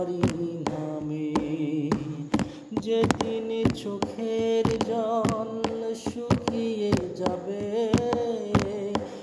নামে। যেদিন চোখের জল শুকিয়ে যাবে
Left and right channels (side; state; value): both; identical; correlation 1.00